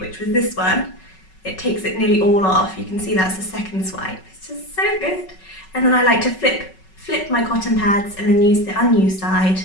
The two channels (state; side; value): late; right; 5.3 ms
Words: was this one, it takes it nearly all off. You can see that's the second swipe. It's just so good. And then I like to flip my cotton pads and then use the unused side